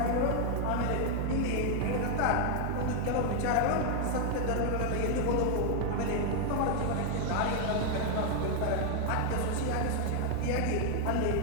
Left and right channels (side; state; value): both; different; correlation 0.00